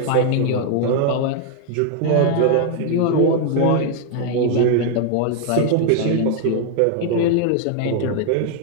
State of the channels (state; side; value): different; both; correlation 0.00